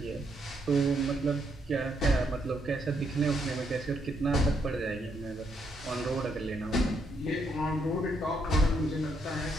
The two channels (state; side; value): normal; both; correlation 0.75